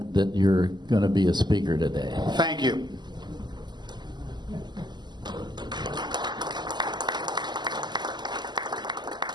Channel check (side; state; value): left; late; 0.21 ms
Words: that you're going to be a speaker today. Thank you.